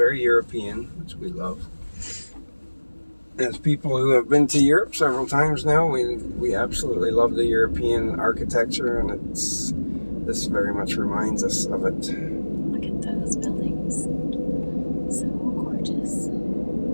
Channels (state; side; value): inverted; both; correlation -1.00